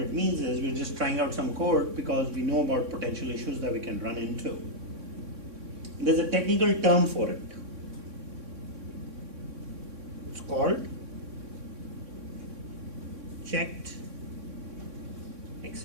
means is we're just trying out some code because we know about potential issues that we can run into. There's a technical term for it. It's called checked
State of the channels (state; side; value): late; left; 3.6 ms